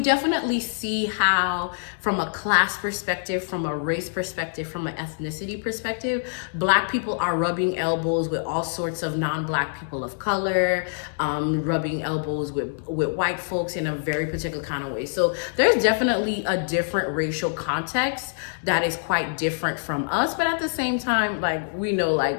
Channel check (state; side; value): silent; right; digital silence